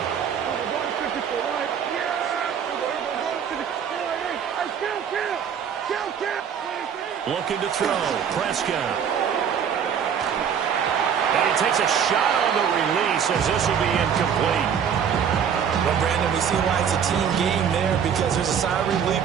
Looking to throw, Prescott. And he takes a shot on the release as this will be incomplete. Well, Brandon, we see why it's a team game there, because there's a sigh of relief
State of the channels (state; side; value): quieter; left; 7.8 dB